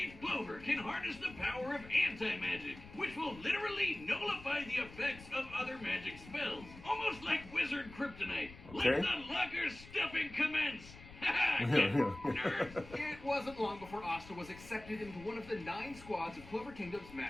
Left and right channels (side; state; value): left; noise; rumble, 17 dB below the sound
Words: Clover can harness the power of anti-magic, which will literally nullify the effects of other magic spells. Almost like Wizard Kryptonite. Okay. Let the locker stuffing commence! Nerds! It wasn't long before Asta was accepted into one of the 9 squads of Clover Kingdom's